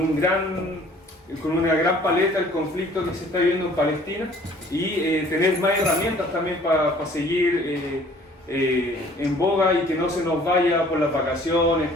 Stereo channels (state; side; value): normal; both; correlation 0.54